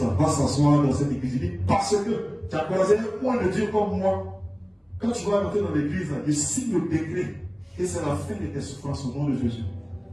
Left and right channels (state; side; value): identical; both; correlation 1.00